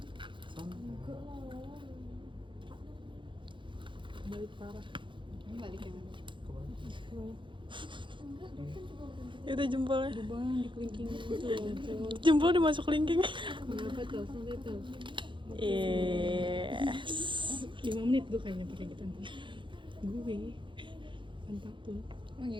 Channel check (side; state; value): left; late; 0.23 ms